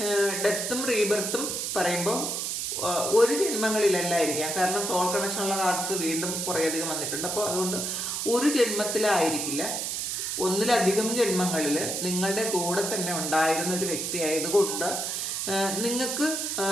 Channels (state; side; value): noise; right; hiss, 2 dB below the sound